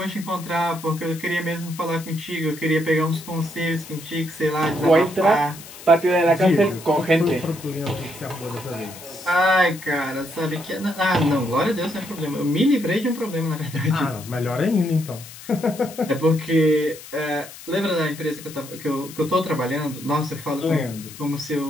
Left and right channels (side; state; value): left; noise; hiss, 16 dB below the sound